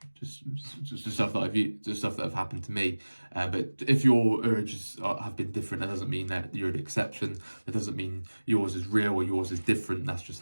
stuff that I've used, just stuff that have happened to me. But if your urges have been different, that doesn't mean that you're an exception. That doesn't mean yours is real or yours is different. That's just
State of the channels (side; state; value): both; inverted; correlation -1.00